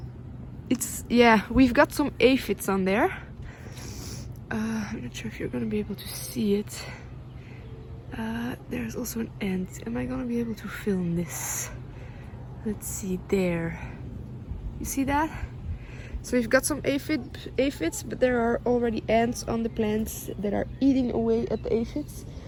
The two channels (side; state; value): both; identical; correlation 1.00